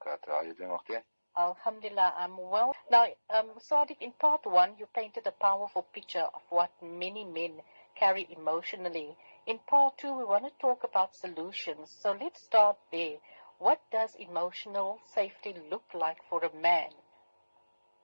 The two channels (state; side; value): inverted; both; correlation -1.00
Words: How are you doing, Ukhti? Alhamdulillah, I'm well. Now, Musadik, in part one, you painted a powerful picture of what many men carry emotionally. In part two, we want to talk about solutions. So let's start there. What does emotional safety look like for a man?